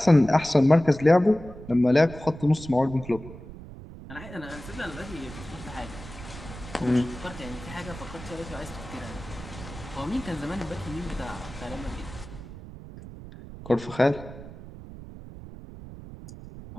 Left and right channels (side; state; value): right; noise; rumble, 14 dB below the sound